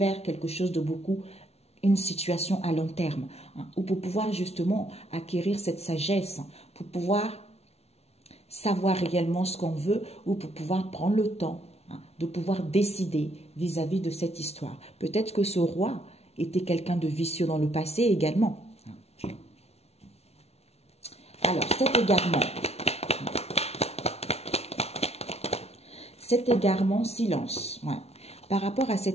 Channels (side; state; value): right; late; 0.31 ms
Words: quelque chose de beaucoup, une situation à long terme, hein, ou pour pouvoir justement acquérir cette sagesse, pour pouvoir savoir réellement ce qu'on veut, ou pour pouvoir prendre le temps, hein, de pouvoir décider vis-à-vis de cette histoire. Peut-être que ce roi était quelqu'un de vicieux dans le passé également. Alors, cet égarement, silence. Ouais. Par rapport à